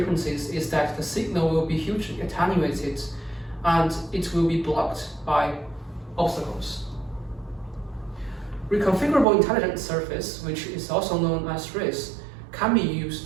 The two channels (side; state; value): left; drops out; at 9.2 s